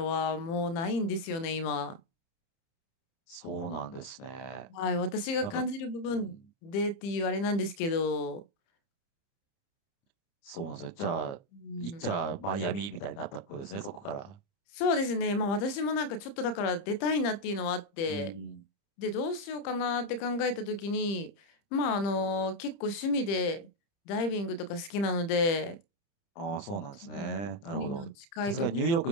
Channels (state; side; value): late; right; 30 ms